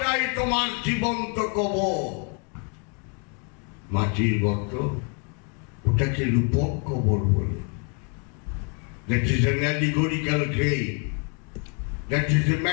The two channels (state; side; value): quieter; right; 37.9 dB